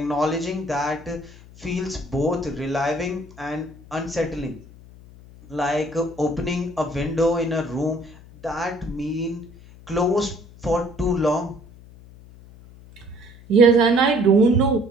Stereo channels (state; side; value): noise; left; hum, 21 dB below the sound